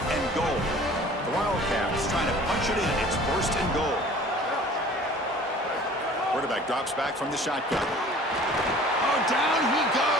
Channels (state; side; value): normal; both; correlation 0.48